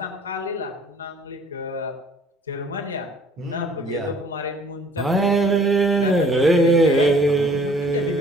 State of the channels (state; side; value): normal; both; correlation 0.56